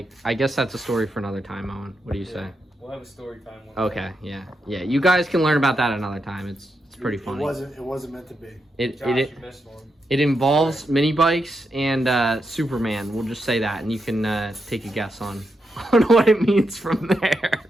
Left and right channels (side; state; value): both; normal; correlation 0.84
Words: I guess that's a story for another time, Owen. What do you say? We'll have a story time one Okay, yeah. You guys can learn about that another time. It's pretty funny. It wasn't meant to be. Josh, you missed one. It involves mini bikes and Superman. We'll just say that, and you can take a guess on what it means from there.